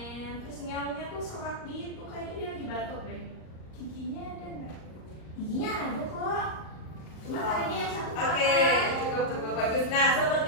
Terus nyawanya tuh serak gitu, kayaknya dia lagi batuk deh. Giginya ada nggak? Giginya ada kok. Cuma karena dia yang satu Oke, cukup bagus. Nah,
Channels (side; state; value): right; late; 38 ms